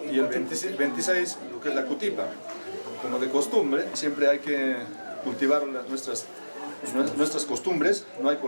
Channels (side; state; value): both; inverted; correlation -1.00